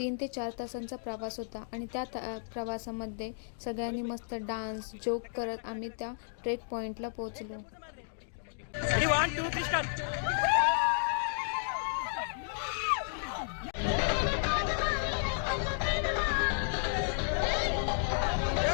ते 4 तासांचा प्रवास होता आणि त्या प्रवासामध्ये सगळ्यांनी मस्त डान्स जोक करत आम्ही त्या ट्रेक पॉइंटला पोहोचलो.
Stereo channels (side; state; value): right; silent; digital silence